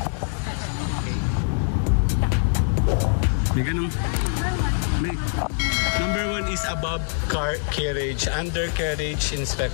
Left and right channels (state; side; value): silent; right; digital silence